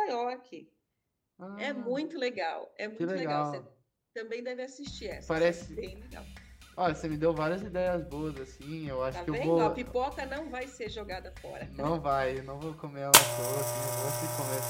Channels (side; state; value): both; identical; correlation 1.00